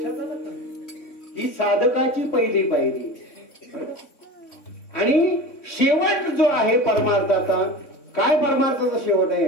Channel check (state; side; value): late; right; 3.5 ms